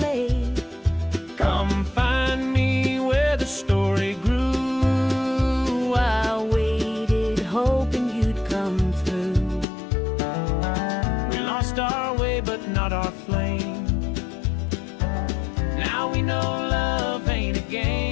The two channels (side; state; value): right; drops out; at 9.7 s